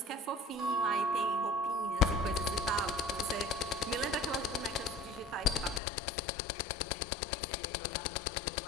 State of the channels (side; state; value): right; drops out; at 5.8 s